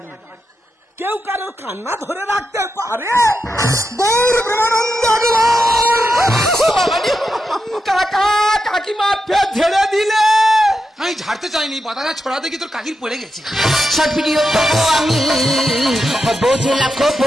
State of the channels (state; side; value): normal; both; correlation 0.87